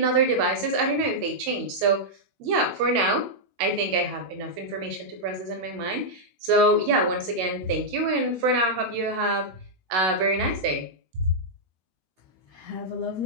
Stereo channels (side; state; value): left; late; 16 ms